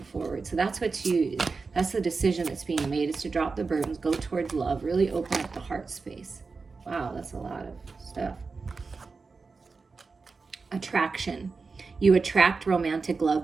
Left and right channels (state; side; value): quieter; left; 4.4 dB